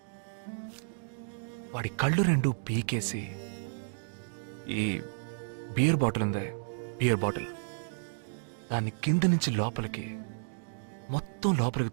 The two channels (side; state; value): left; silent; digital silence